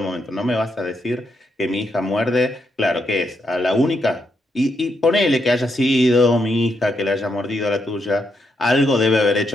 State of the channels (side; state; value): both; normal; correlation 0.80